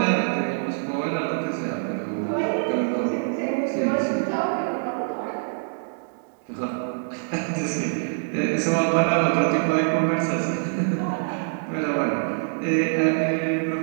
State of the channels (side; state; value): left; silent; digital silence